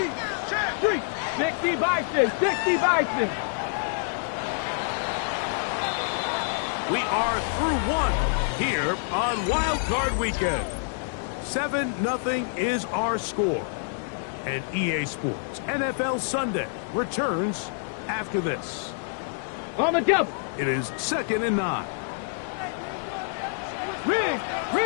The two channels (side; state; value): right; silent; digital silence